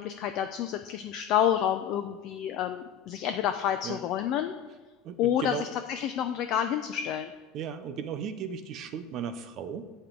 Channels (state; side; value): quieter; right; 7.2 dB